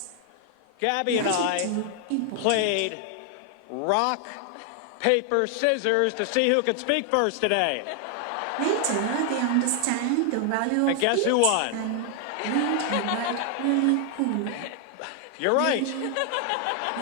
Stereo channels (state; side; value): different; both; correlation 0.00